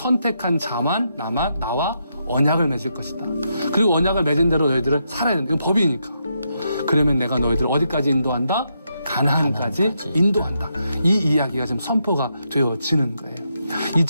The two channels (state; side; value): inverted; both; correlation -0.81